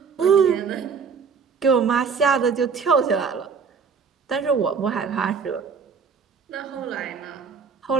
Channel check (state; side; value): quieter; left; 5.7 dB